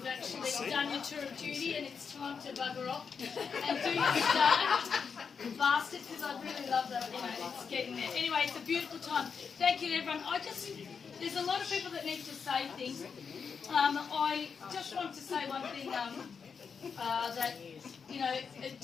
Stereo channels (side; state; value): right; quieter; 6.0 dB